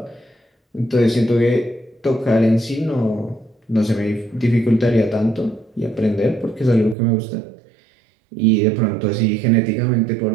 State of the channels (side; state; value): left; drops out; at 7.0 s